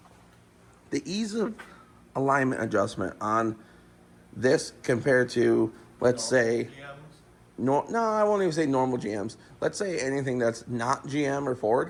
The ease of alignment adjustment on this compared to, let's say, no, I won't even say normal GMs. Let's say anything that's not GM or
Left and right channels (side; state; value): both; identical; correlation 1.00